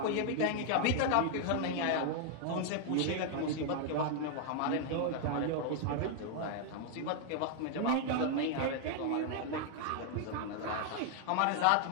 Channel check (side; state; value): both; different; correlation 0.00